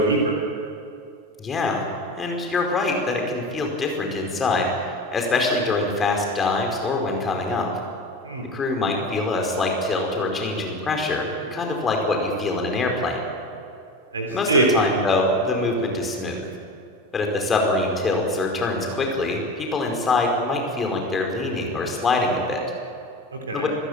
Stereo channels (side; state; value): both; normal; correlation 0.29